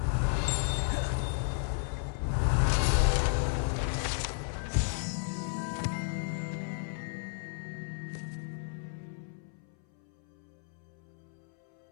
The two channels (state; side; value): silent; right; 56 dB below the other